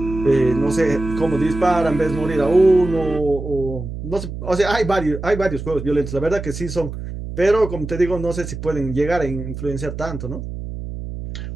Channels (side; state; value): right; noise; hum, 8 dB below the sound